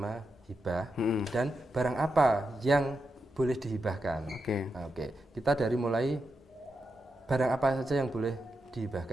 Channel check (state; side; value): normal; both; correlation 0.87